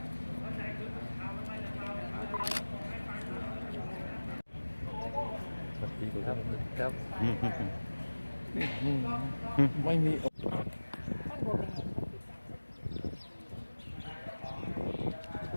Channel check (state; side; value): inverted; both; correlation -1.00